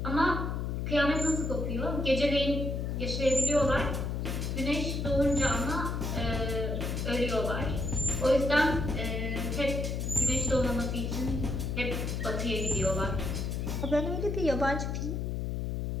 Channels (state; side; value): noise; left; hum, 2 dB below the sound